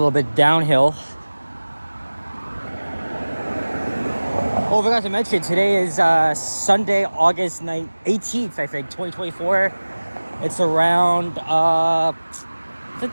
bit downhill. Oh, I forgot to mention, today is Sunday, August 18th, I think, 2024. It's around, I think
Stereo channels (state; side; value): inverted; both; correlation -1.00